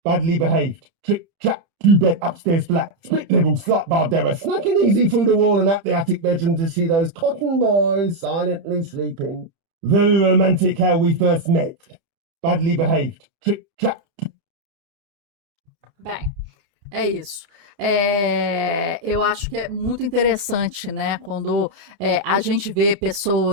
Badly behaved. Trick, trap, 2-bed upstairs flat. Split level, slut Bardera. Snacking easy through the wall and up the attic bedroom to see those cotton boys silently sleeping. Very romantic how we first met. Badly behaved. Trick, trap. Bem, é isso. Eu acho que é muito interessante, né? Quando a gente vê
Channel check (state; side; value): late; left; 30 ms